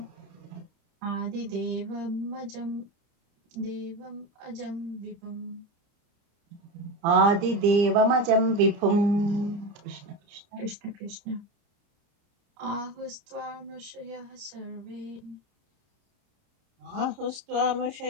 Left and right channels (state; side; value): late; left; 30 ms